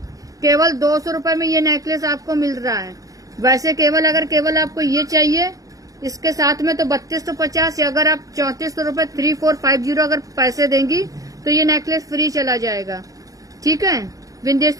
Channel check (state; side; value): late; left; 0.17 ms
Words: केवल 200 रुपए में ये नेकलेस आपको मिल रहा है। वैसे अगर केवल आपको ये चाहिए इसके साथ में तो 3250, या अगर आप 3400 रुपए 3450 अगर पैसे देंगी तो ये नेकलेस फ्री चला जाएगा। ठीक है,